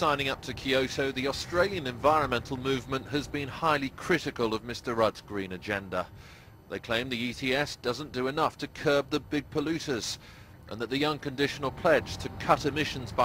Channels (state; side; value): identical; both; correlation 1.00